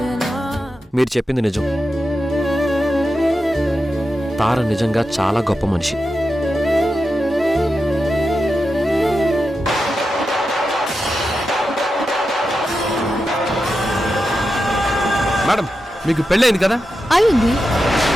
మీరు చెప్పింది నిజం. తార నిజంగా చాలా గొప్ప మనిషి. మేడం, మీకు పెళ్ళైంది కదా? అయింది.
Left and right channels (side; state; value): both; normal; correlation 0.89